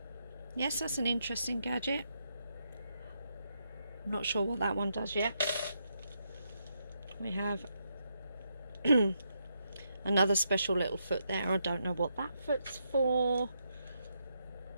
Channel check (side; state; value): both; inverted; correlation -0.80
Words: Yes, that's an interesting gadget. I'm not sure what that one does yet. We have another special little foot there. I don't know what that foot's for.